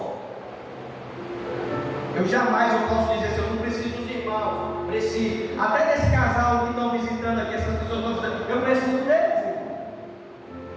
Eu jamais posso dizer assim, eu não preciso dos irmãos, preciso. Até desse casal que estão visitando aqui, essas pessoas estão visitando, eu preciso deles.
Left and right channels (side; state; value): both; identical; correlation 1.00